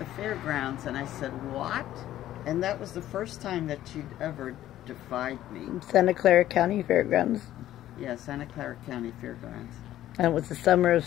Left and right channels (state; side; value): quieter; right; 13.2 dB